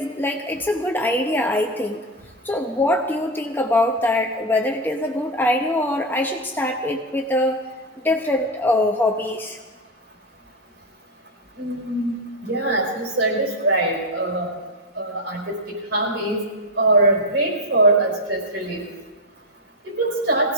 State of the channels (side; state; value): both; normal; correlation 0.11